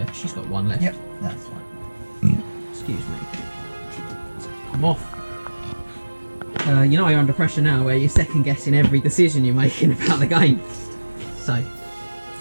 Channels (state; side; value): inverted; both; correlation -1.00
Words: She's got 1 left. Yep, that's fine. Excuse me. Come off. You know you're under pressure now, where you're second guessing every decision you're making about the game. So,